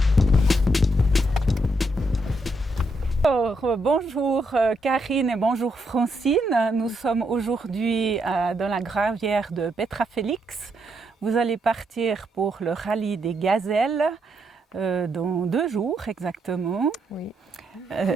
Bonjour Karine et bonjour Francine. Nous sommes aujourd'hui dans la gravière de Petra Félix. Vous allez partir pour le rallye des gazelles dans 2 jours exactement. Oui.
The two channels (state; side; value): normal; both; correlation 0.78